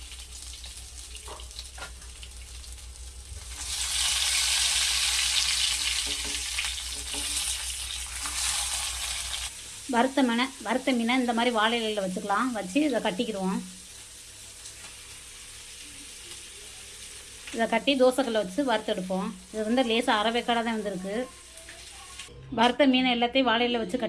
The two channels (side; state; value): both; identical; correlation 1.00